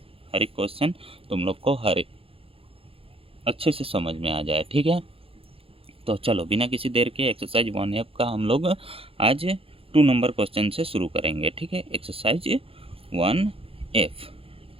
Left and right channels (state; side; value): late; left; 0.27 ms